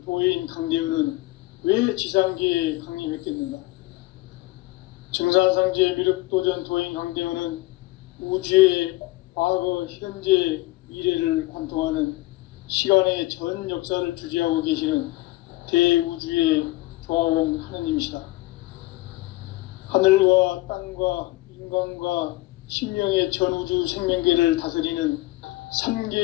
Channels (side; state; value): right; quieter; 19.8 dB